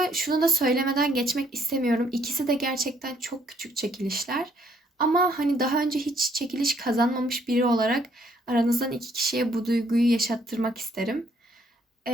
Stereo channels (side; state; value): both; normal; correlation 0.67